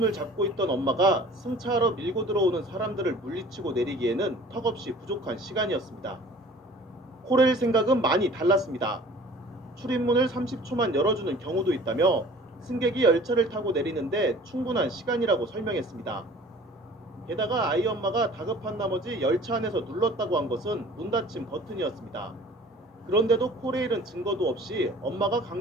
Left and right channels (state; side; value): normal; both; correlation 0.48